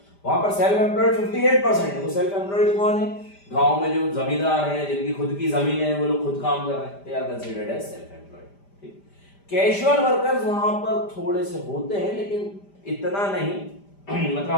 वहां पर सेल्फ एम्प्लॉयड 58% है। वो सेल्फ एम्प्लॉयड कौन है? गांव में जो जमींदार हैं, जिनकी खुद की जमीन है, वो लोग खुद काम कर रहे हैं, they are considered as self employed. ठीक, कैजुअल वर्कर्स वहां पर थोड़े से होते हैं लेकिन इतना नहीं मतलब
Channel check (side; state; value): right; late; 5.0 ms